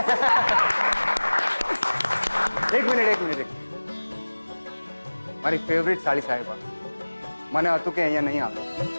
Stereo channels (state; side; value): inverted; both; correlation -1.00